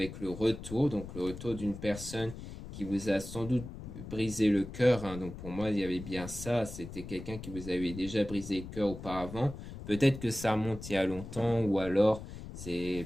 le retour, donc le retour d'une personne qui vous a sans doute brisé le cœur. Hein. Donc pour moi, il y avait bien ça. C'était quelqu'un qui vous avait déjà brisé le cœur auparavant. Peut-être que ça remonte il y a longtemps ou alors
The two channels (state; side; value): noise; left; rumble, 11 dB below the sound